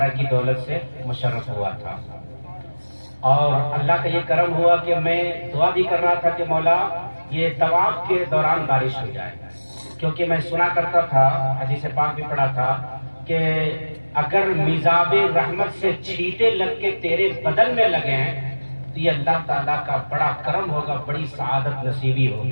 کی دولت سے مشرف ہوا تھا، اور اللہ کا یہ کرم ہوا کہ میں دعا بھی کر رہا تھا کہ مولا یہ طواف کے دوران بارش ہو جائے، کیونکہ میں سنا کرتا تھا، حدیث پاک بھی پڑھا تھا کہ اگر میزاب رحمت سے چھینٹے لگ کے تیرے بدن میں لگے ہیں تو یہ اللہ تعالیٰ کا بڑا کرم ہوگا، بڑی سعادت نصیبی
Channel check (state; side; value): inverted; both; correlation -1.00